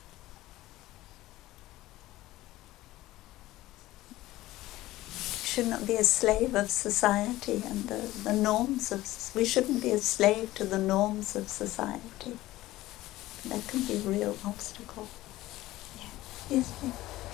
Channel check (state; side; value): quieter; right; 16.7 dB